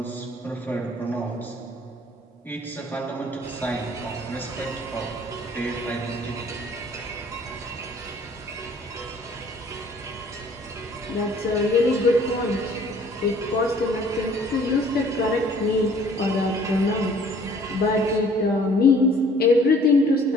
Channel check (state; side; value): normal; both; correlation 0.55